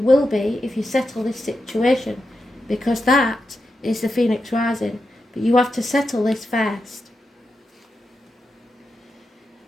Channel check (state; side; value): normal; both; correlation 0.88